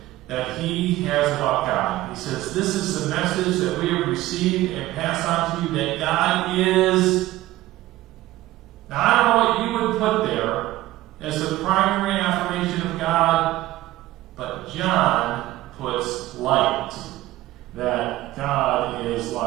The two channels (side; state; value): left; quieter; 16.5 dB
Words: that he has about God. He says, this is the message that we have received and passed on to you, that God is... Now, I don't know what you would put there as the primary affirmation of God, but John puts light, that God is